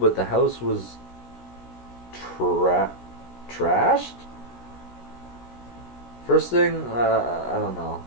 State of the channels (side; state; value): right; late; 16 ms